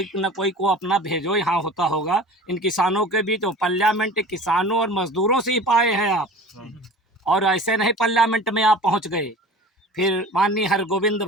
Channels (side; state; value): both; normal; correlation 0.39